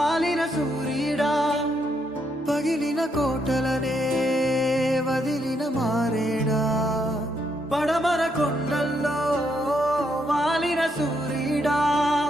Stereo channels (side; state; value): both; normal; correlation 0.76